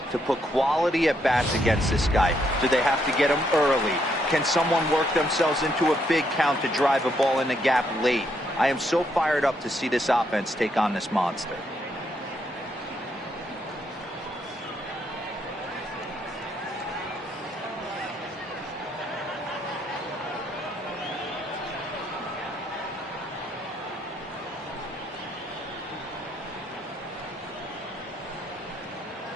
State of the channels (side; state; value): both; normal; correlation 0.74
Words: to put quality at bats against this guy? Do they have to get him early? Can someone work themselves into a big count to drive a ball in the gap late? I am so fired up to see this offense take on this monster.